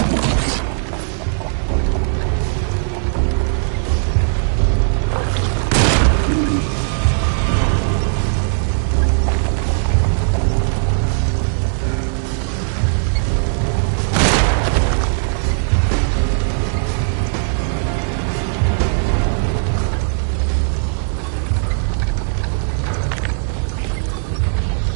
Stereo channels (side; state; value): left; silent; digital silence